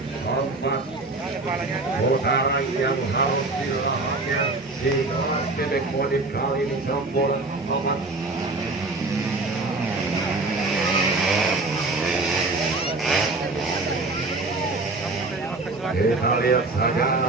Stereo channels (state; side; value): quieter; left; 3.3 dB